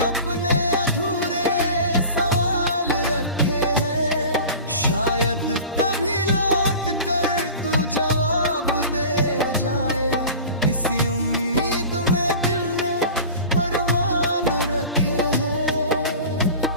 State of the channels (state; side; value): inverted; both; correlation -0.37